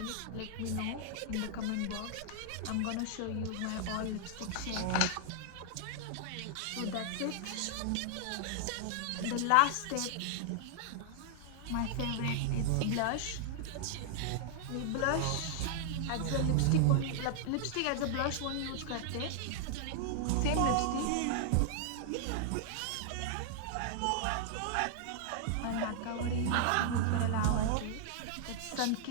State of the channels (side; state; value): both; different; correlation -0.01